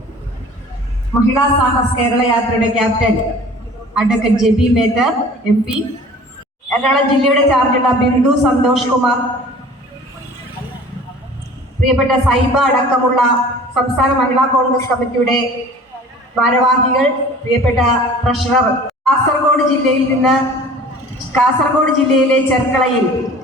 महिला साहस केरल यात्रा कैप्टन अडवकेट जेबी मेहतर MP एर्णाकुളം ജില്ലയുടെ ചാർജുള്ള ബിന്ദു സന്തോഷ് കുമാർ പ്രിയപ്പെട്ട സൈബ അടക്കമുള്ള സംസ്ഥാന മഹിളാ കോൺഗ്രസ് കമ്മിറ്റിയുടെ ഭാരവാഹികൾ പ്രിയപ്പെട്ട ട്രഷറർ കാസർഗോഡ് ജില്ലയിലെ ചെർക്കളയിൽ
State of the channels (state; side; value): normal; both; correlation 0.46